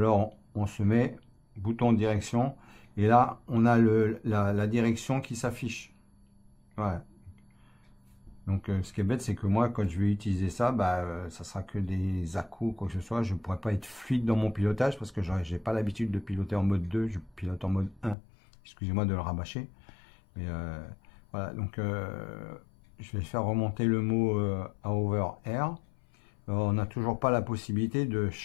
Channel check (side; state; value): right; drops out; at 18.2 s